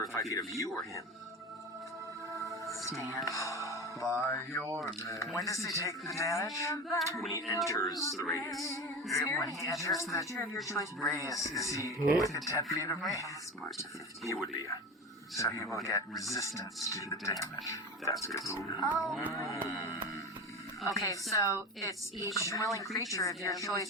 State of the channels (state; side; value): normal; both; correlation 0.27